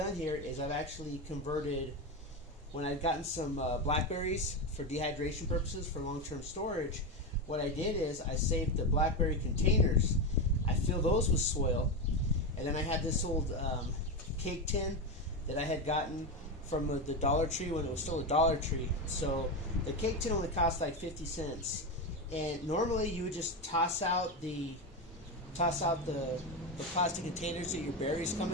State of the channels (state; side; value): normal; both; correlation 0.14